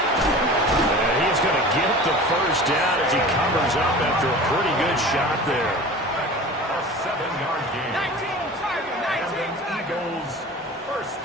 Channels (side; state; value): both; normal; correlation 0.38